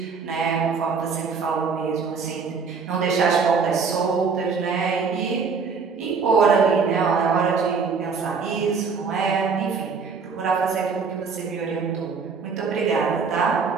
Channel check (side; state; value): left; quieter; 5.3 dB